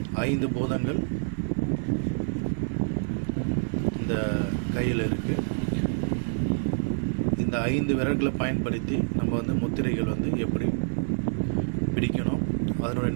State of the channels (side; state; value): left; silent; digital silence